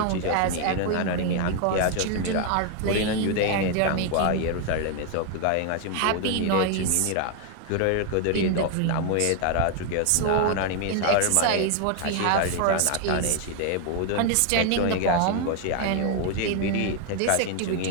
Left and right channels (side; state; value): both; different; correlation 0.00